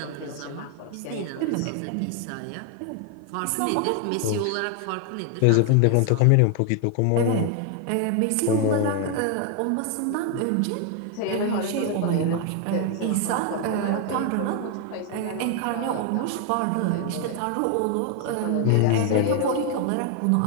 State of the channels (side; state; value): both; different; correlation 0.01